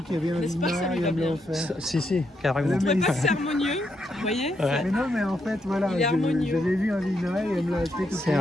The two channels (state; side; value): normal; both; correlation 0.80